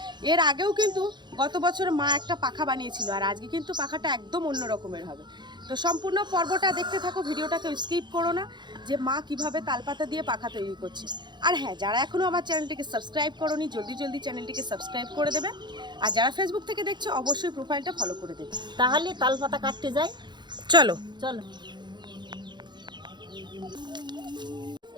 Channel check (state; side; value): late; left; 0.21 ms